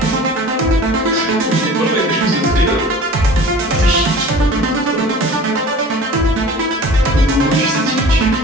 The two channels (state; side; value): normal; both; correlation 0.42